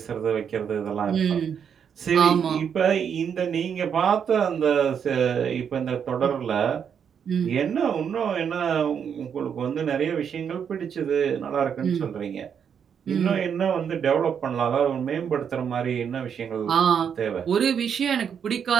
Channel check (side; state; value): left; quieter; 7.6 dB